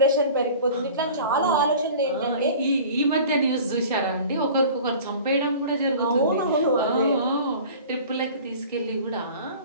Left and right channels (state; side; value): inverted; both; correlation -0.42